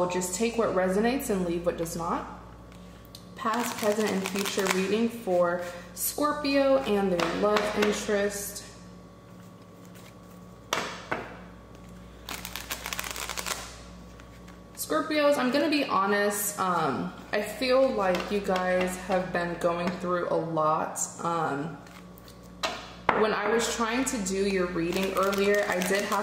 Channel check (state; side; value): identical; both; correlation 1.00